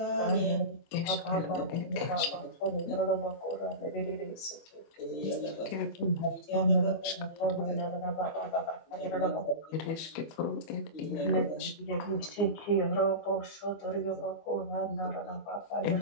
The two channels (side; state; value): right; late; 25 ms